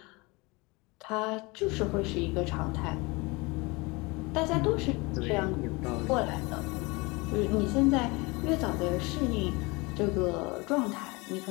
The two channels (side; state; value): right; quieter; 25.8 dB